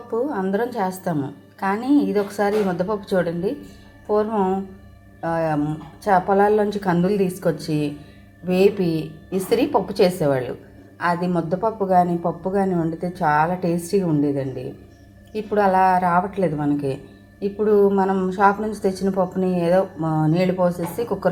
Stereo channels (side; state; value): both; identical; correlation 1.00